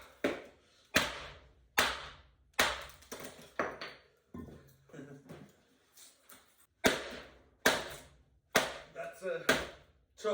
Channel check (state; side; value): identical; both; correlation 1.00